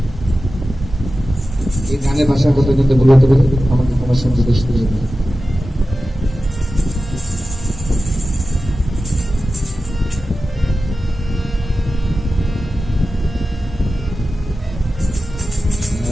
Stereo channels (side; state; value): both; normal; correlation 0.94